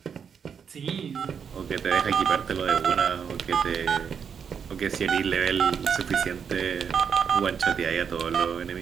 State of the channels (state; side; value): quieter; left; 7.0 dB